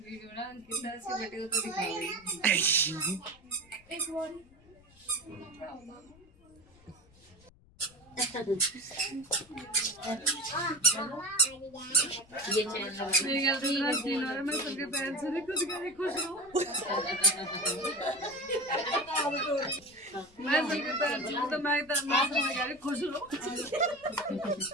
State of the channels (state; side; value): noise; left; rumble, 27 dB below the sound